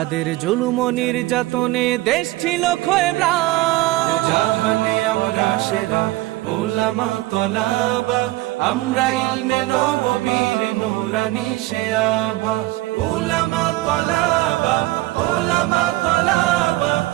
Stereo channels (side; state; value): left; quieter; 18.6 dB